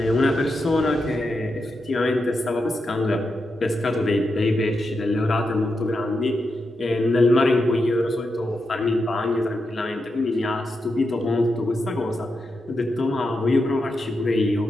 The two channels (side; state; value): both; normal; correlation 0.86